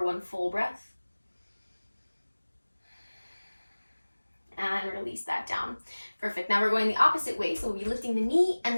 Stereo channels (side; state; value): both; inverted; correlation -1.00